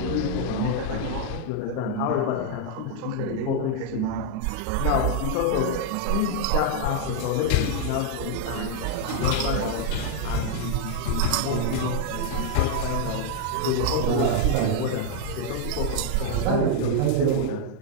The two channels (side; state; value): both; different; correlation 0.00